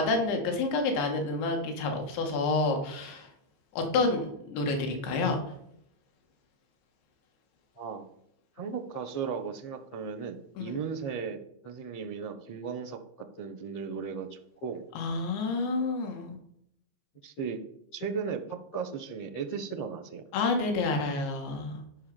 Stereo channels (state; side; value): late; right; 15 ms